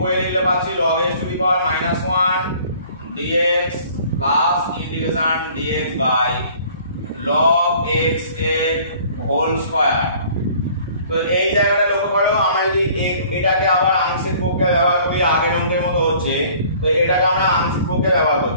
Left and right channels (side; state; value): both; inverted; correlation -0.53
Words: লিখলে পাচ্ছি log x to the power -1 dx plus integration dx by log x এর হোল স্কয়ার। তো এই জায়গাটা লক্ষ্য করো, আমরা যদি এটাকে আবার আংশিক পক্ষে ব্যবহার করি, আগের অঙ্কের মতো হচ্ছে, তো এটাকে আমরা আংশিক পক্ষে ব্যবহার